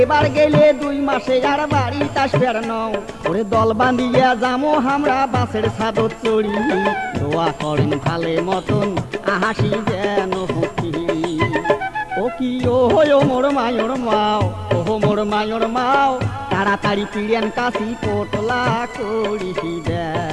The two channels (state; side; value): identical; both; correlation 1.00